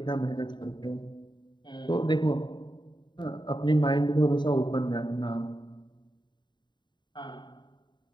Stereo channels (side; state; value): right; late; 0.22 ms